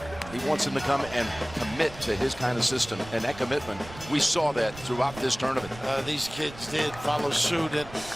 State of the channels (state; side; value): noise; right; rumble, 16 dB below the sound